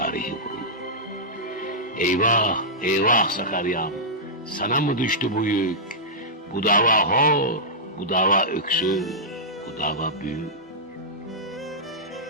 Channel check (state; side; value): normal; both; correlation -0.11